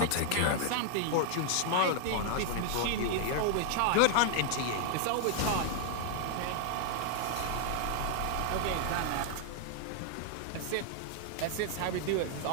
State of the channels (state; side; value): different; both; correlation 0.00